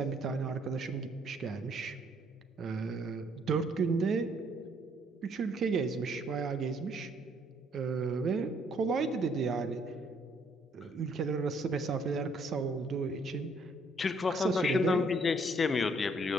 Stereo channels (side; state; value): both; normal; correlation 0.66